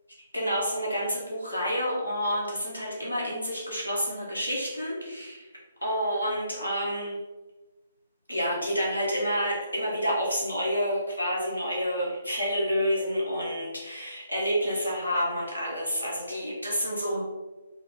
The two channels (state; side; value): inverted; both; correlation -0.73